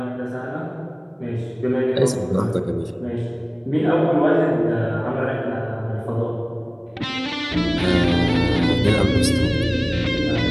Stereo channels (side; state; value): both; identical; correlation 1.00